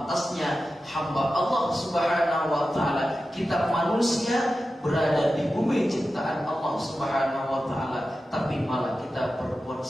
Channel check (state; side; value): normal; both; correlation 0.93